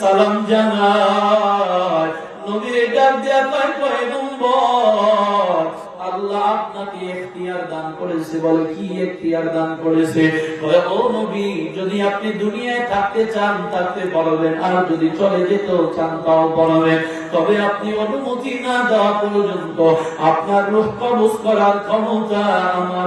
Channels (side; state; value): both; identical; correlation 1.00